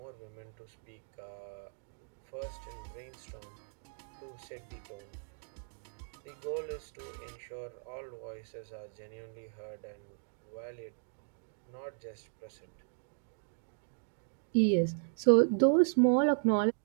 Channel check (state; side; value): silent; left; digital silence